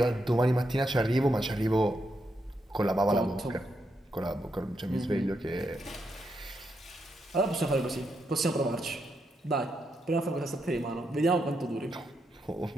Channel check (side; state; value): both; normal; correlation 0.82